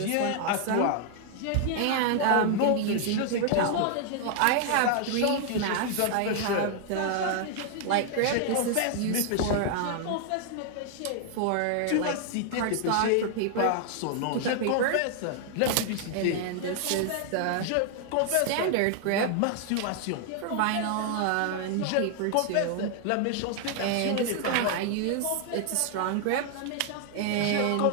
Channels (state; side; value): different; both; correlation 0.00